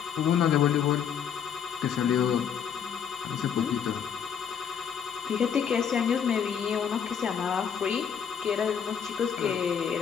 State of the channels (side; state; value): right; quieter; 7.8 dB